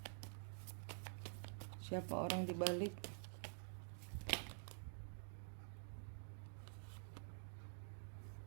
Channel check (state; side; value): silent; left; digital silence